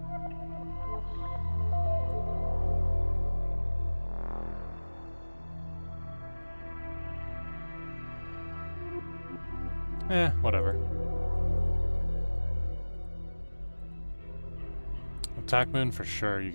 Whatever. Attack moon for sure. You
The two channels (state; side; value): inverted; both; correlation -1.00